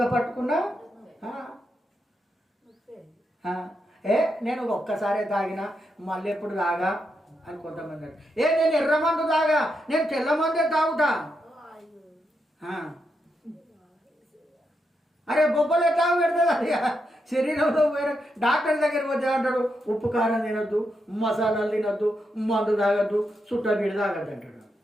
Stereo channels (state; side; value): normal; both; correlation 0.83